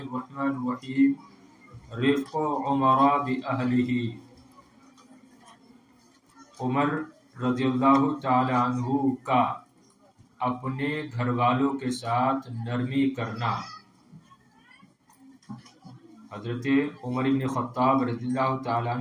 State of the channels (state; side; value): identical; both; correlation 1.00